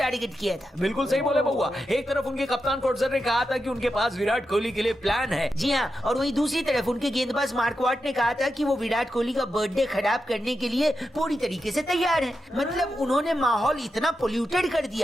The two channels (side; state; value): both; normal; correlation 0.88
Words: किया था। बिल्कुल सही बोले बउआ। एक तरफ उनके कप्तान कोटजर ने कहा था कि उनके पास विराट कोहली के लिए प्लान है। जी हाँ, और वहीं दूसरी तरफ उनके गेंदबाज मार्कवाट ने कहा था कि वो विराट कोहली का बर्थडे खराब करने के लिए पूरी तरीके से तैयार है। मतलब उन्होंने माहौल इतना पोल्यूटेड कर